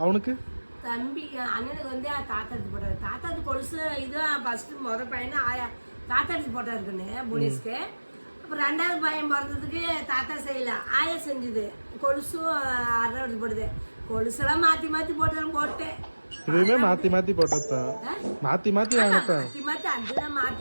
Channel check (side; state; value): both; inverted; correlation -1.00